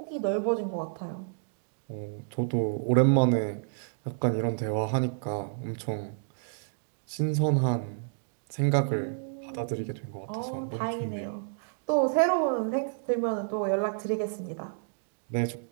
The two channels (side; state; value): left; silent; digital silence